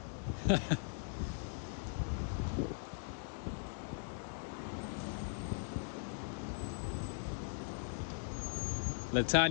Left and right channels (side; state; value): right; silent; digital silence